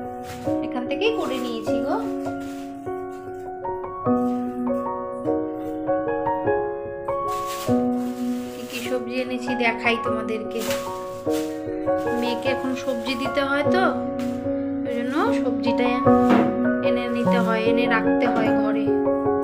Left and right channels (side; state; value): both; identical; correlation 1.00